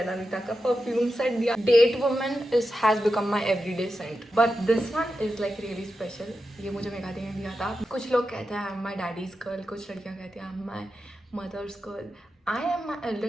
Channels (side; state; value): both; normal; correlation 0.90